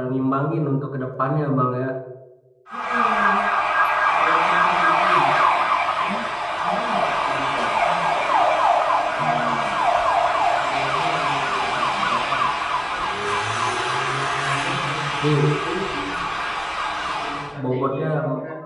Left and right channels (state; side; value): identical; both; correlation 1.00